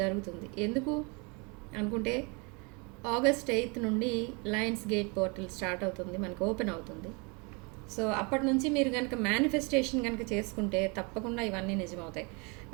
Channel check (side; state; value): left; quieter; 31.1 dB